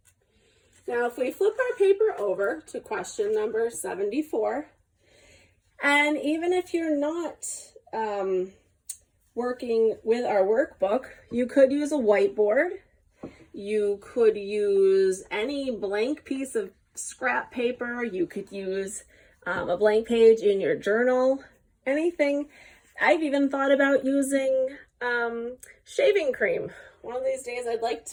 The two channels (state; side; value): identical; both; correlation 1.00